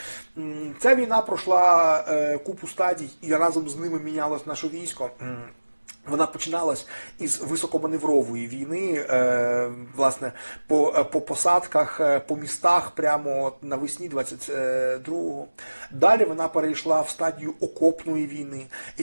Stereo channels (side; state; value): both; inverted; correlation -1.00